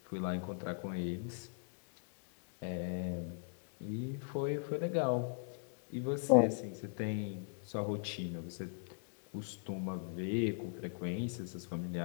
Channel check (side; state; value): right; silent; digital silence